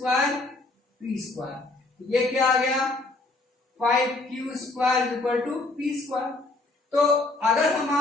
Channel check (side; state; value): right; quieter; 3.1 dB